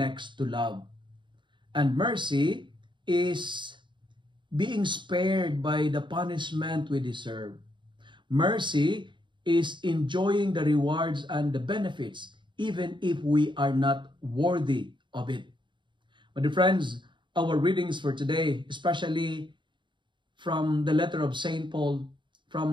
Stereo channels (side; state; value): left; late; 0.23 ms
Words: to love. And mercy is being spared by the punishment we deserve. Mercy is enjoying the rewards and the benefits even if we are not worthy of it. My dear friends, our readings for today, especially from the letter of St. Paul,